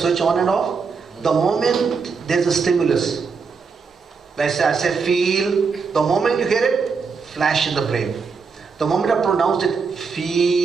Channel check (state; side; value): quieter; left; 5.2 dB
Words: on and off, the moment there's a stimulus, I say feel, the moment you hear it, flash in the brain. The moment I pronounce it,